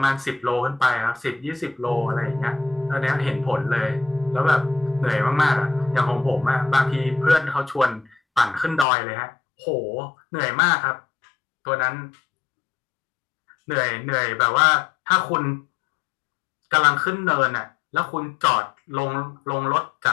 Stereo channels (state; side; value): drops out; right; at 8.8 s